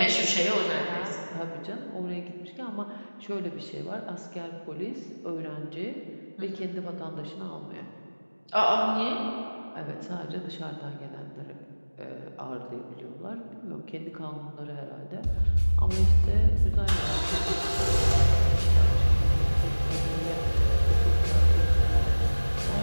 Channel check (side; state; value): both; inverted; correlation -1.00